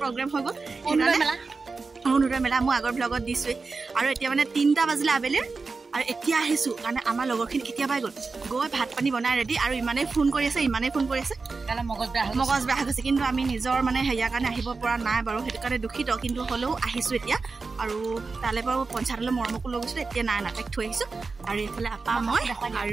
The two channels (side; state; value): left; quieter; 4.2 dB